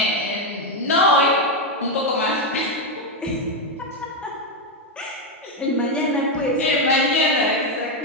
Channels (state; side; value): normal; both; correlation 0.04